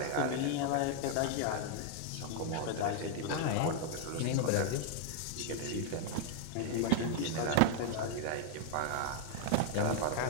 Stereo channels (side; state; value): both; different; correlation 0.00